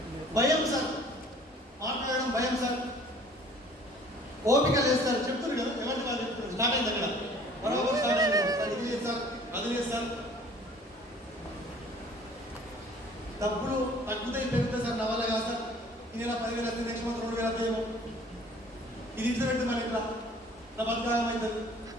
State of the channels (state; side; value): normal; both; correlation 0.52